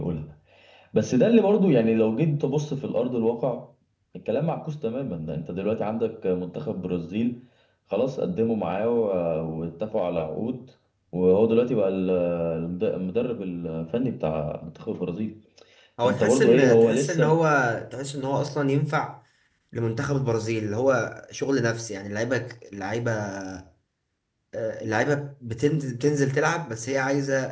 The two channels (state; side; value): identical; both; correlation 1.00